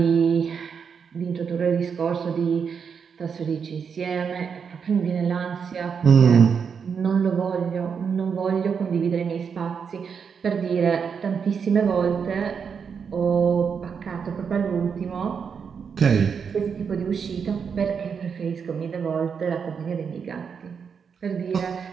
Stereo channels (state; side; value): quieter; left; 6.5 dB